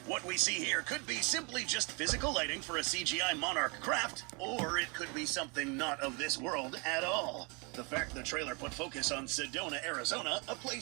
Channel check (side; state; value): left; quieter; 31.5 dB